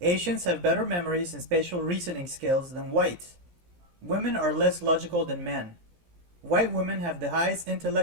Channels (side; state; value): left; late; 17 ms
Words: Asians have better memories and spatial reasoning skills than whites. Women are less logical than men. White women have the highest